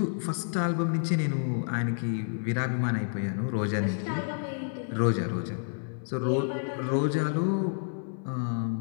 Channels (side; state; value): right; silent; 58 dB below the other